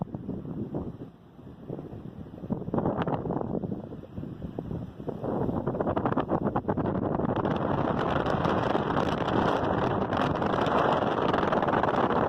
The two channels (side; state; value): both; identical; correlation 1.00